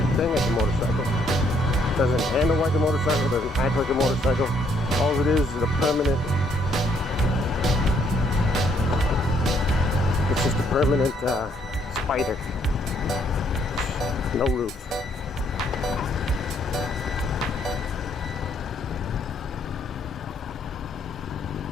thing as a motorcycle. It doesn't handle like a motorcycle, doesn't act like a motorcycle. All it is a permanent, it's just a permanent spider. No roof.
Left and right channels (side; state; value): both; normal; correlation 0.69